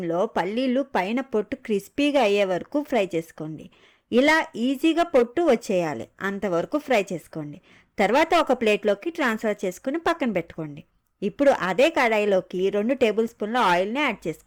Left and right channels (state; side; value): identical; both; correlation 1.00